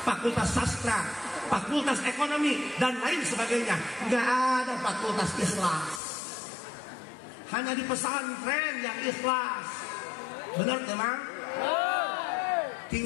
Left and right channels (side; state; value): right; drops out; at 6.0 s